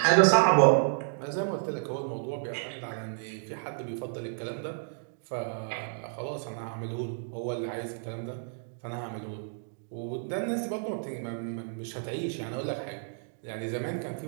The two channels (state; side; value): silent; left; digital silence